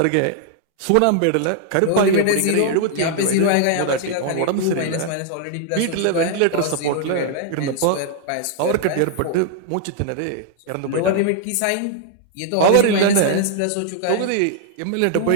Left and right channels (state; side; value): different; both; correlation 0.00